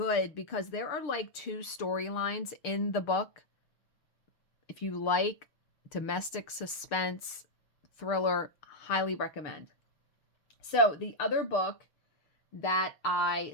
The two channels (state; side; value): late; right; 6.6 ms